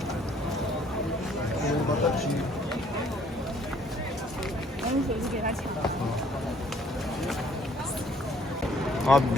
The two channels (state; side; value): normal; both; correlation 0.61